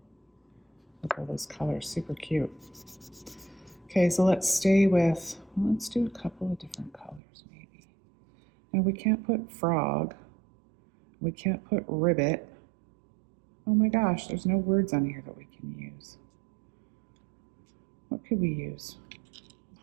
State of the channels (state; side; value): drops out; left; at 7.2 s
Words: Look at all those colors, super cute. Okay, so let's stay with, well, let's do a couple of different colors maybe. Now we can't put frog. We can't put ribbit. Oh my gosh, there's no words on here that we can use. What could we use?